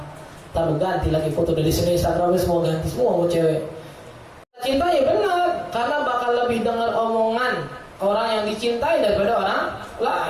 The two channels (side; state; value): both; identical; correlation 1.00